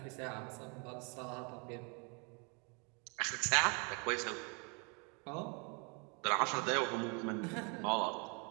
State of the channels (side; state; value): left; quieter; 34.0 dB